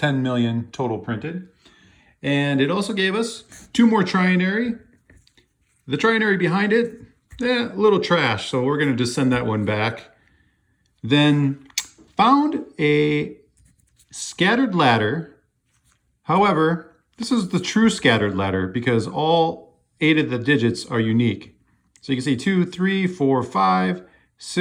million total printed. And it also gave us 2 more trinary. The trinary behind it, a little trash, so we're gonna just send that one back. Then found a scattered ladder. However, this is the true scattered ladder because all 8 of the digits are unique. So you can see 2, 3, 4, 5,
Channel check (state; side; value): identical; both; correlation 1.00